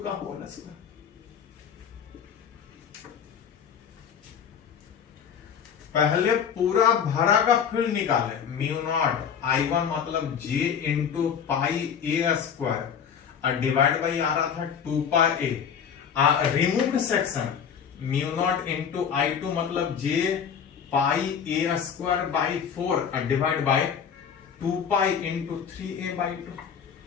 का होल स्क्वायर। पहले पूरा भरा का फील्ड निकाले, म्यू नॉट I1 मतलब J into pi a square और डिवाइड बाई आ रहा था 2 pi a. Removed section mu naught into I2 मतलब J pi a square by 4 और divide by 2 pi into 3a/2।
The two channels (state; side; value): quieter; right; 7.6 dB